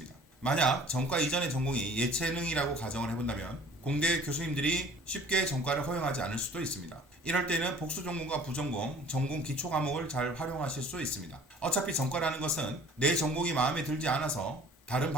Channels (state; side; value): normal; both; correlation 0.50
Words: 만약 전과 이전의 전공이 예체능이라고 가정을 해본다면 공대 교수님들이 쉽게 전과를 허용하지 않을 수도 있습니다. 이럴 때는 복수 전공과 부전공, 전공 기초 과목을 잘 활용하실 수 있습니다. 어차피 전과라는 것은 내 전공이 마음에 들지 않아서 다른